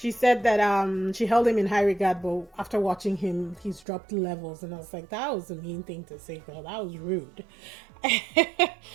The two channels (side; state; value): left; drops out; at 3.9 s